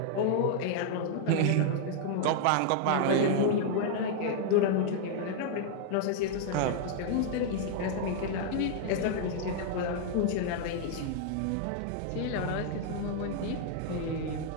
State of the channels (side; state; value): both; different; correlation -0.01